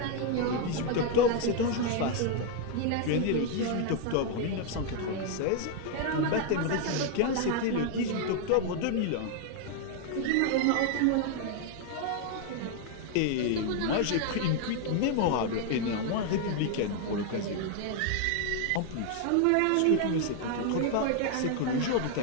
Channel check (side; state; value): both; different; correlation 0.00